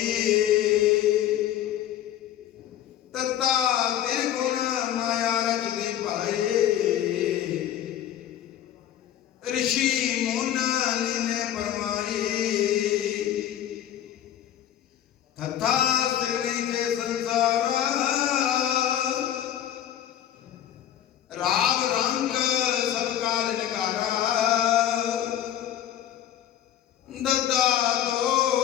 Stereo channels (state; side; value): quieter; right; 11.1 dB